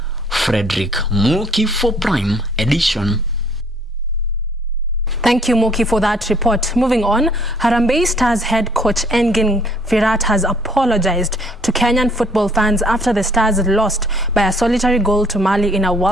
Frederick Muki for Prime Edition. Thank you, Moki, for that report. Moving on, Harambee Stars head coach Engin Firat has apologized to Kenyan football fans after the Stars lost by a solitary goal to Mali in a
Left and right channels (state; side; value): normal; both; correlation 0.61